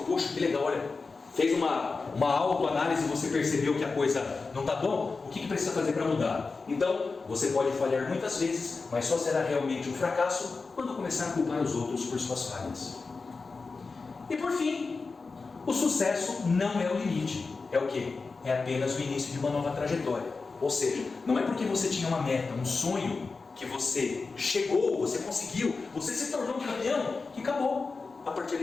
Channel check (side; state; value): right; quieter; 4.2 dB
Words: poxa, que legal, olha, fez uma autoanálise e você percebeu que a coisa não está bom, o que precisa fazer para mudar? Então, você pode falhar muitas vezes, mas só será realmente um fracasso quando começar a culpar os outros por suas falhas. E por fim, o sucesso não é o limite. É o quê? É apenas o início de uma nova trajetória. Ou seja, não é porque você tinha uma meta, um sonho, que você chegou, você conseguiu, você se tornou campeão, que acabou. A partir daí